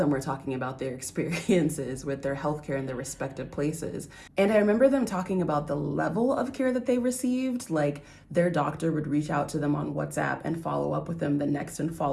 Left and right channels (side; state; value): both; identical; correlation 1.00